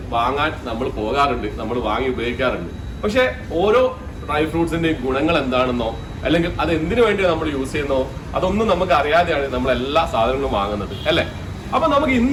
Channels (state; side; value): identical; both; correlation 1.00